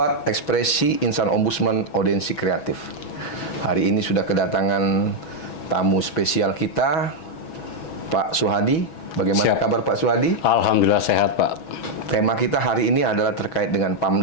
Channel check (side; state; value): right; late; 6.1 ms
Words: ekspresi Insan Ombudsman Audensi Kreatif. Hari ini sudah kedatangan tamu spesial kita, Pak Suhadi. Bagaimana kabar Pak Suhadi? Alhamdulillah sehat, Pak. Tema kita hari ini adalah terkait dengan